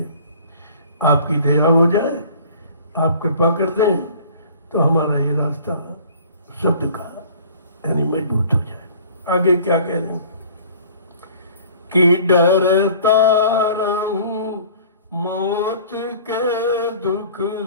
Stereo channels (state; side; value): inverted; both; correlation -0.49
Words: आपकी दया हो जाए, आप कृपा कर दें तो हमारा ये रास्ता शब्द का यानी मजबूत हो जाए। आगे क्या कह रहे हैं कि डरता रहूं मौत के दुख